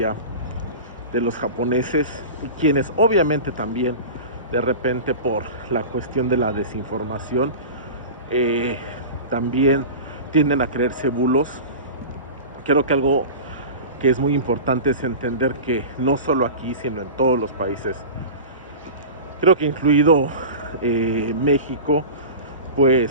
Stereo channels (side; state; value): both; inverted; correlation -0.32